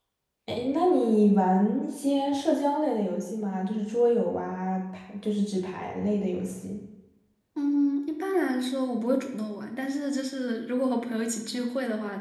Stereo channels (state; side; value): identical; both; correlation 1.00